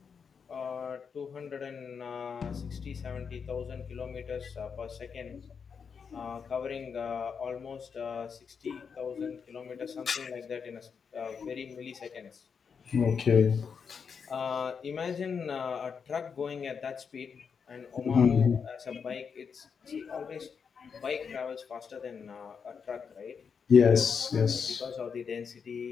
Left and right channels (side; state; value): right; quieter; 6.2 dB